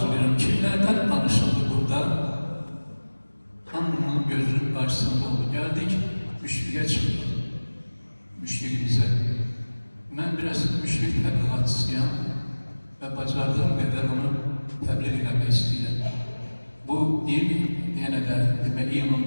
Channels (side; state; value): both; inverted; correlation -1.00